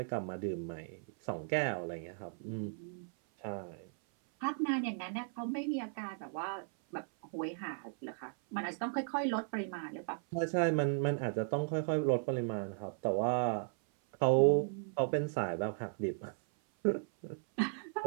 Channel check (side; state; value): left; silent; 54 dB below the other